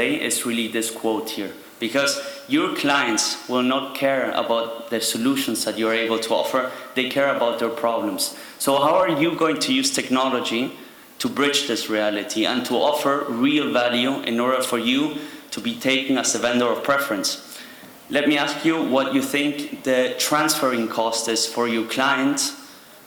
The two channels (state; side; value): identical; both; correlation 1.00